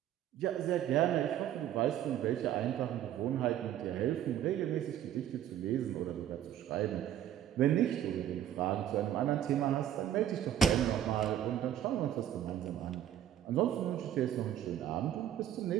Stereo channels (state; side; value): quieter; left; 10.9 dB